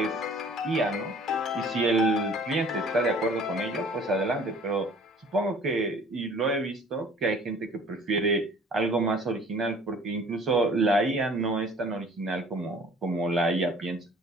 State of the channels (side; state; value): both; normal; correlation 0.51